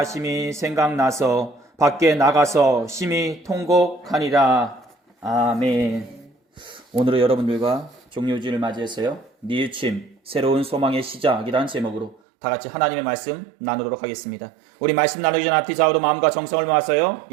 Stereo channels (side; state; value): left; drops out; at 12.2 s